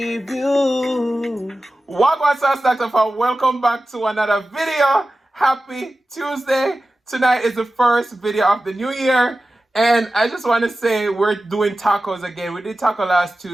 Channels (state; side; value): normal; both; correlation 0.95